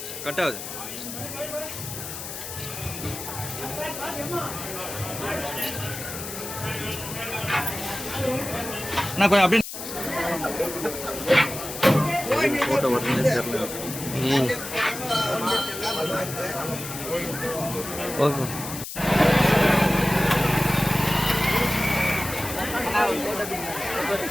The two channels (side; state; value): left; noise; hiss, 8 dB below the sound